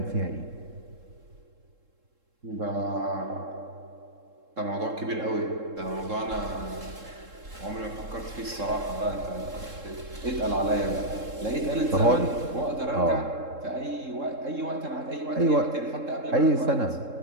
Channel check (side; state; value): left; late; 3.7 ms